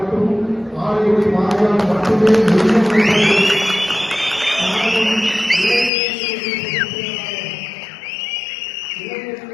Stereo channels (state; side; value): drops out; right; at 5.9 s